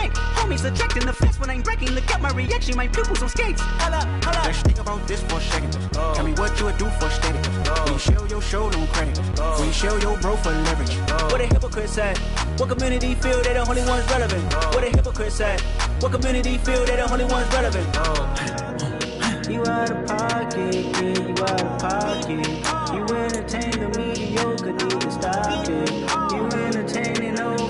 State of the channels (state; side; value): identical; both; correlation 1.00